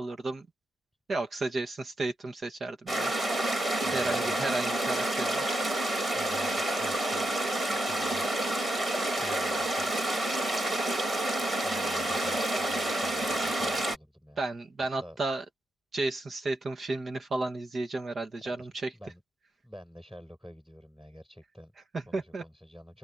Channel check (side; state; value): both; normal; correlation 0.84